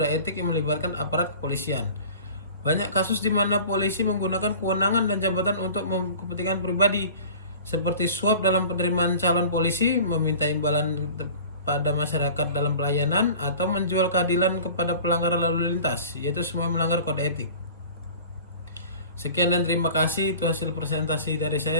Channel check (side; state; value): both; inverted; correlation -0.42